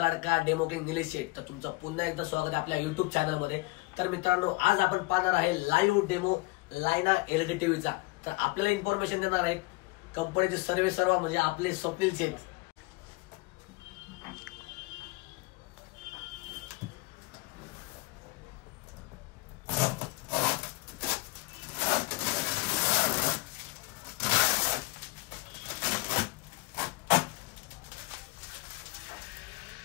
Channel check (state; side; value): quieter; right; 23.7 dB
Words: लाडका डेमो किंग निलेश शेठ. तर तुमचं पुन्हा एकदा स्वागत आहे आपल्या युट्यूब चॅनल मध्ये. तर मित्रांनो, आज आपण पाहणार आहे लाईव्ह डेमो लायना एलईडी टीव्हीचा. तर आपल्याला इन्फॉर्मेशन देणार आहेत कंपनीचे सर्व म्हणजे आपले स्वप्नील शेठ.